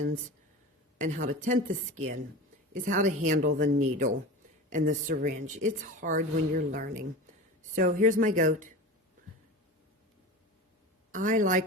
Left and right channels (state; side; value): normal; both; correlation 0.32